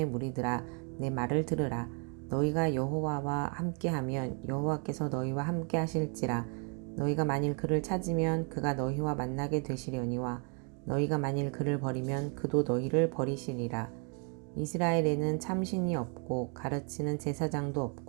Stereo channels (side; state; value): left; quieter; 39.6 dB